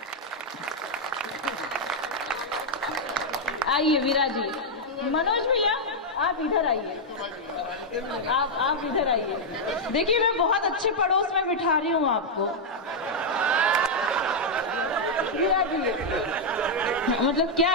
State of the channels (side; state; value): both; normal; correlation -0.03